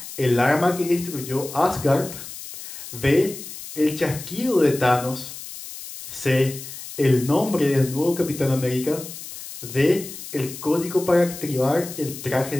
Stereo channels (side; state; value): left; noise; hiss, 12 dB below the sound